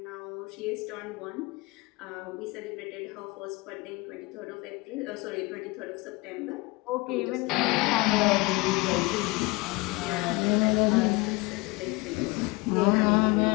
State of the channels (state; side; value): quieter; right; 24.1 dB